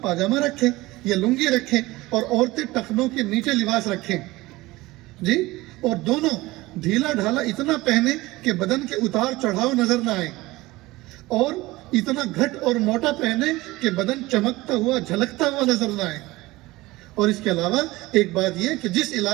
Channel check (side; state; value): left; quieter; 19.8 dB